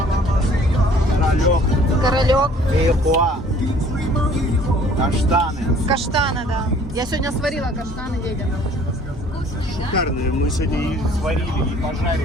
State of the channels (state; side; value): normal; both; correlation 0.54